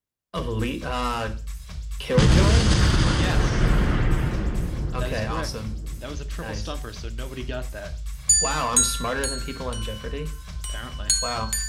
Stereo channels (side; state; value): both; identical; correlation 1.00